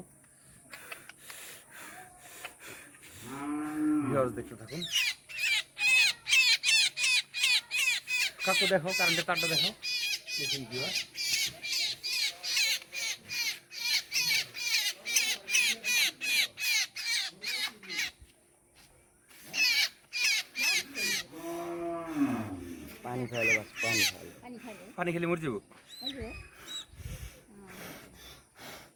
ভিউয়ার্স দেখতে থাকুন, কাকু দেখো কারেন্টের তারটা দেখো, দেখুন ভিউয়ার্স। পানি খাইলে বাস পানি খেলে মরে যাবো।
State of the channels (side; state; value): both; identical; correlation 1.00